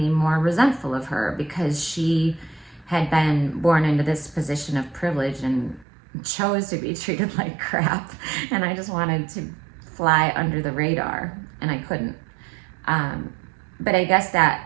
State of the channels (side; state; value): left; drops out; at 5.9 s